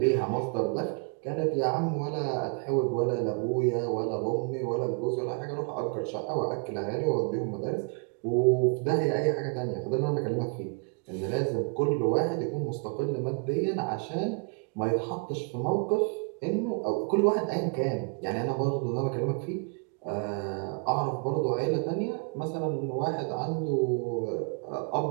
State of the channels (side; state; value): left; quieter; 37.2 dB